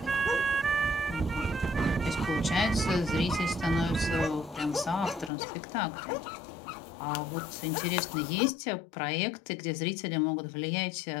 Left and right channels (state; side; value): drops out; right; at 5.3 s